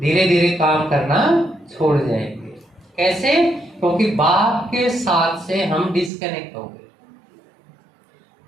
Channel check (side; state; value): left; drops out; at 6.1 s